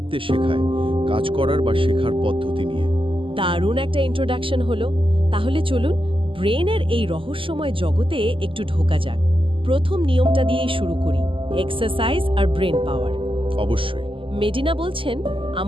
শেখায়, কাজ করার বা শেখার পদ্ধতি নিয়ে। দারুণ একটা ইন্ট্রোডাকশন হলো। তাহলে চলুন ব্রেনের এই রহস্যময় জগতে একটু ঢোকা যাক। প্রথম নিয়মটা দিয়েই শুরু করি, এক্সারসাইজ আর ব্রেন পাওয়ার। অবশ্যই। মেডিনা বলছেন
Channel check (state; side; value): late; left; 0.25 ms